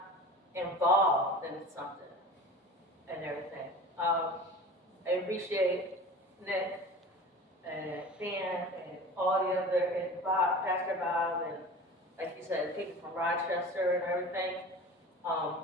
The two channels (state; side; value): normal; both; correlation 0.37